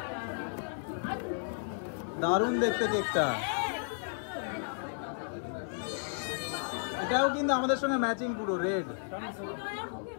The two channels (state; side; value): silent; right; 56 dB below the other